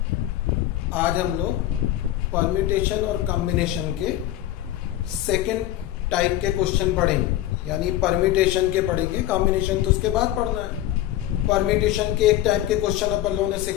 आज हम लोग परम्यूटेशन और कॉम्बिनेशन के सेकंड टाइप के क्वेश्चन पढ़ेंगे। यानी परम्यूटेशन के पढ़ेंगे, कॉम्बिनेशन तो उसके बाद पढ़ना है। परम्यूटेशन के एक टाइप के क्वेश्चन अपन लोगों ने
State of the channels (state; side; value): quieter; right; 13.7 dB